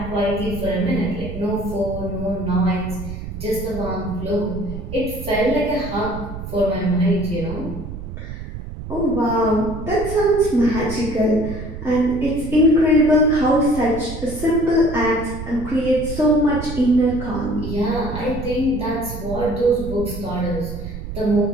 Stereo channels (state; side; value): noise; right; rumble, 9 dB below the sound